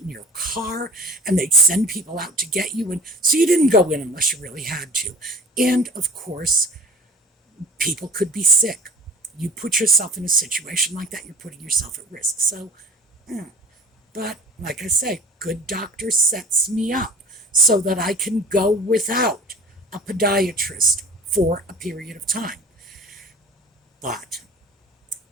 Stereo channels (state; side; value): normal; both; correlation 0.42